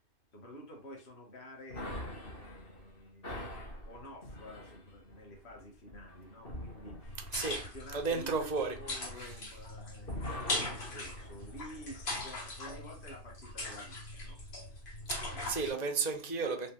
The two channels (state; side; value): late; right; 2.5 ms